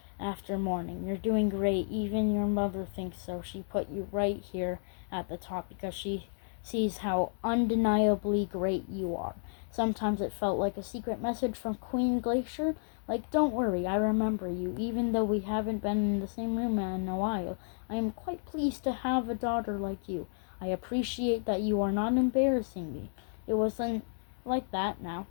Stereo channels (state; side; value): silent; right; digital silence